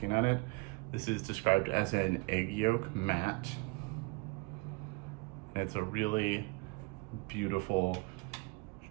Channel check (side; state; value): left; quieter; 27.2 dB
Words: at it, this is described as an egg yolk matte. And it's a really beautiful